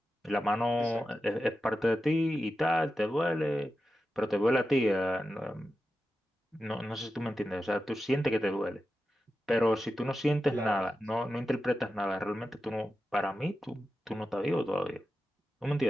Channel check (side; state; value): both; normal; correlation 0.91